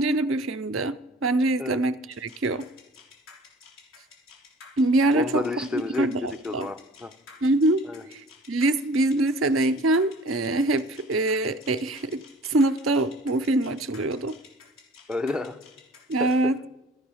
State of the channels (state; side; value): normal; both; correlation 0.48